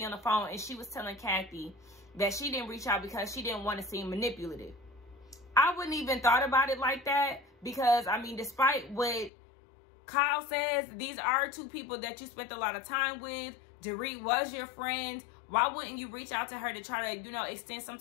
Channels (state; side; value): drops out; right; at 9.3 s